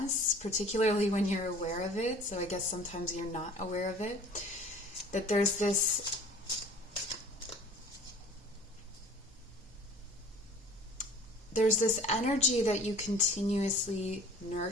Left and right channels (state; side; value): normal; both; correlation 0.47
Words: particularly when you're aware of it. So I guess sometimes you're not aware of it. That there's this energy that you continuously